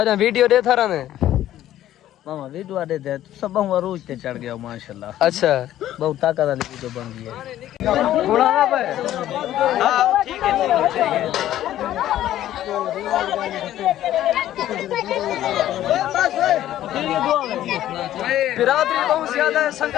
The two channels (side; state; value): right; quieter; 12.8 dB